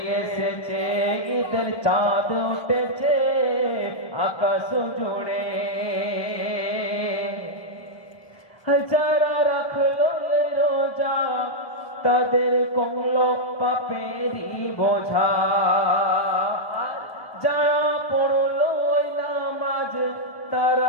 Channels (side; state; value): right; late; 1.1 ms